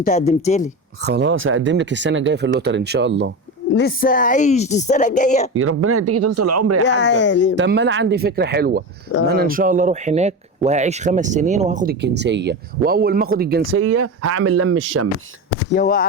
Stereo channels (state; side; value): normal; both; correlation 0.22